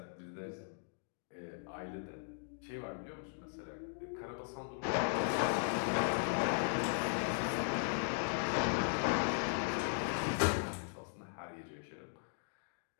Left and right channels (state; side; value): silent; right; digital silence